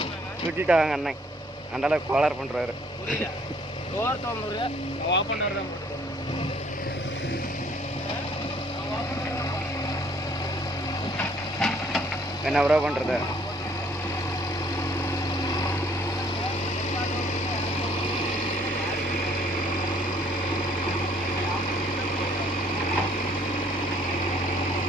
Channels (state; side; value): normal; both; correlation 0.61